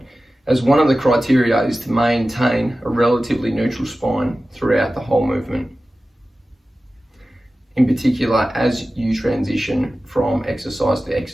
as one of the criteria is to maintain a relatively neutral spine throughout the whole movement. In particular, as you transition from exercise to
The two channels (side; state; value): both; normal; correlation 0.95